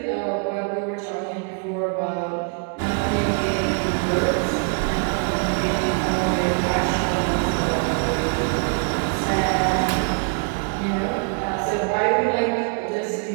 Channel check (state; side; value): quieter; left; 37.6 dB